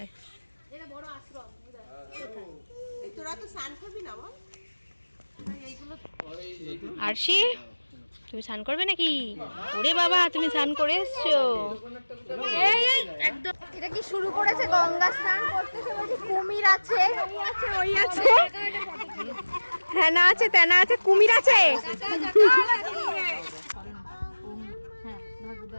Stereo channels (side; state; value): both; inverted; correlation -1.00